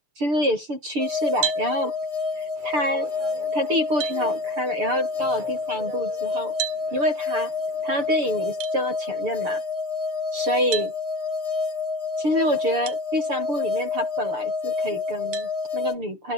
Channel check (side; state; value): left; late; 6.8 ms